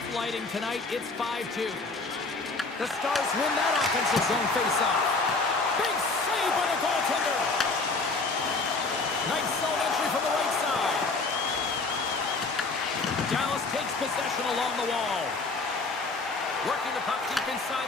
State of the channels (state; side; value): quieter; right; 3.7 dB